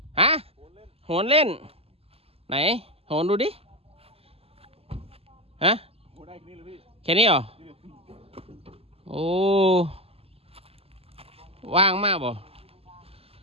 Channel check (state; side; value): late; left; 0.28 ms